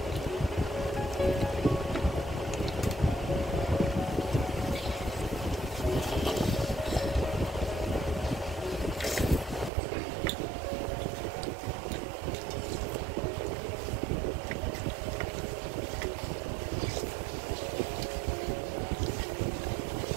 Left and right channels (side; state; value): left; drops out; at 9.7 s